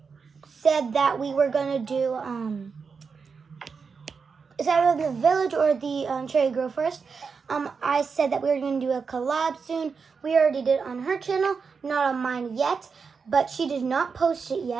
said that we were gonna do is either the village or the Cherry Grove Forest. I said that we were gonna do a collab soon. We already did it on her channel, not on mine yet, but she did not post it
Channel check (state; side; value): quieter; left; 5.4 dB